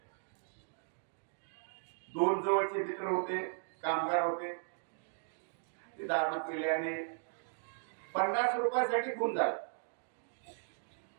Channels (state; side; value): silent; left; digital silence